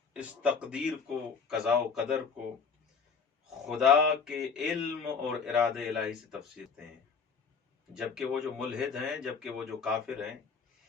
اس تقدیر کو، قضاء و قدر کو خدا کے علم اور ارادے الہی سے تفسیر کرتے ہیں، جبکہ وہ جو ملحد ہیں، جبکہ وہ جو کافر ہیں،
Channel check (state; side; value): quieter; right; 5.6 dB